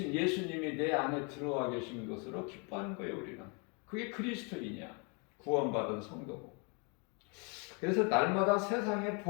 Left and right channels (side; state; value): right; quieter; 34.1 dB